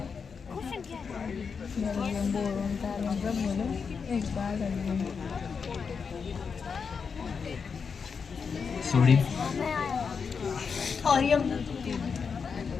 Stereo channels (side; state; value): right; quieter; 5.8 dB